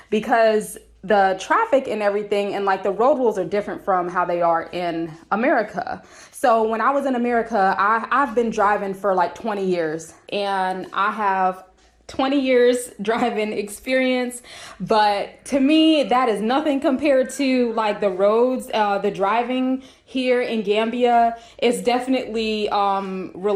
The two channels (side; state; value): both; identical; correlation 1.00